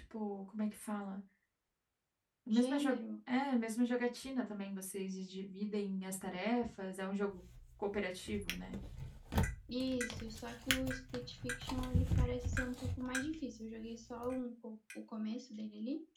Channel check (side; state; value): both; identical; correlation 1.00